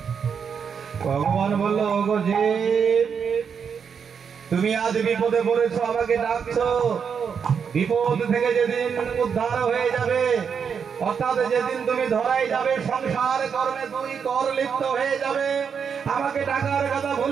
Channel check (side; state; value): left; quieter; 6.8 dB